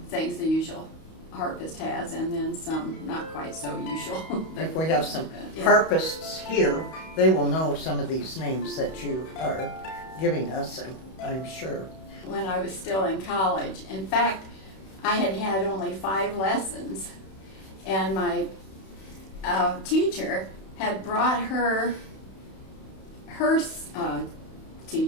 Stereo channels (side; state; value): right; late; 31 ms